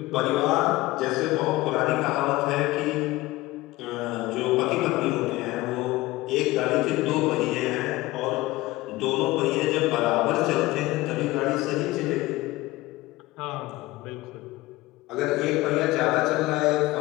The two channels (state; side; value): quieter; right; 19.1 dB